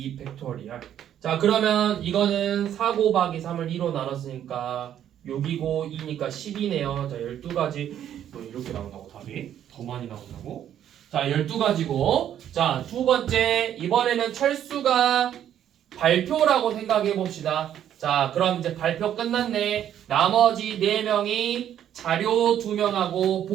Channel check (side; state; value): left; quieter; 10.4 dB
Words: 자, 그러면 이거는 4 곱하기 3을 2로 나눴으니까 6이고 2니까 10이네요. 자, 12가지. 뭐 이렇게 나온다고 답이? 더 많이 나온다고? 자, 12가지고. 자, 두 번째. 이번에는 철수가 발표라고 생각해 봅시다. 자, 그럼 이제 발표 끝났네. 나머지 4명이 자료 2명하고